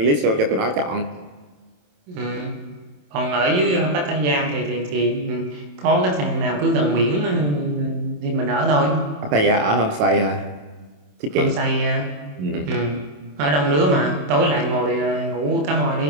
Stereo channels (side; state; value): left; late; 27 ms